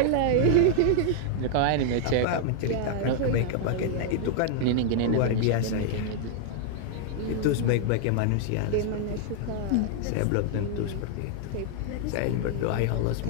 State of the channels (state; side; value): different; both; correlation 0.00